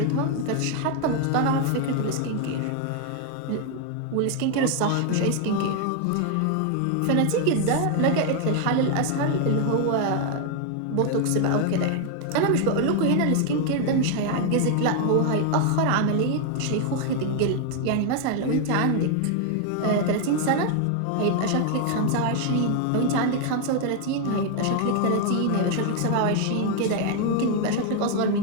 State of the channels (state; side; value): different; both; correlation 0.00